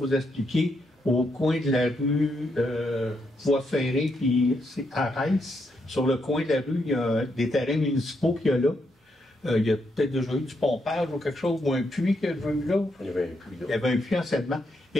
expliquer, au coin de la rue Voie Ferrée, puis c'est Arès. Sur le coin de la rue, il y a des terrains municipaux qu'il y a là. Il y a peut-être déjà eu du pompage ou quelque chose, ou un puits qu'il y a eu là. Il y avait un puits là. Il y avait un puits anciennement.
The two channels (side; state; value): both; normal; correlation 0.79